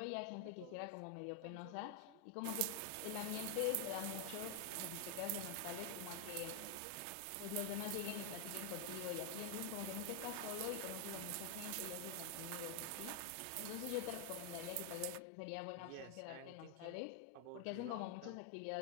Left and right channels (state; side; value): different; both; correlation 0.00